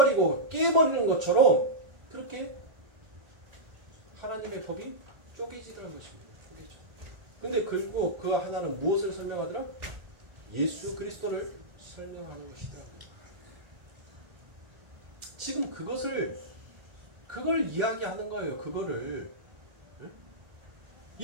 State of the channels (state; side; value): late; left; 1.4 ms